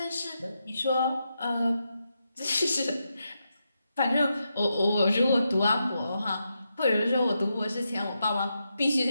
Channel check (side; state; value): both; inverted; correlation -0.85